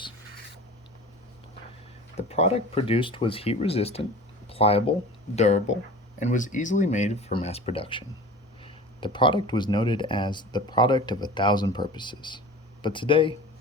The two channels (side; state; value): both; normal; correlation 0.38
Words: The product produced was heat resistant, pliable, durable, and was easily made for mass production. The product was noted as the product of 1,000 purposes, but today